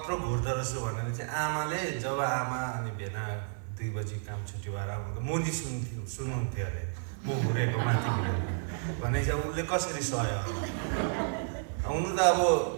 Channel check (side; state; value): left; silent; digital silence